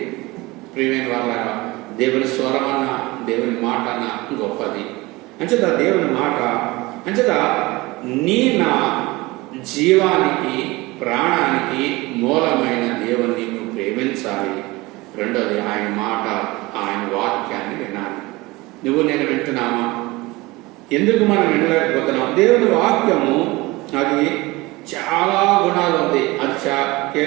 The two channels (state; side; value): quieter; left; 21.8 dB